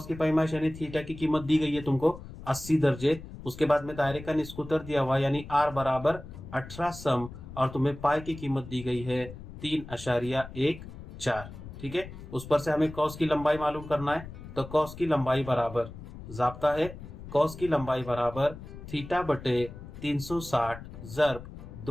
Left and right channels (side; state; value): left; noise; rumble, 13 dB below the sound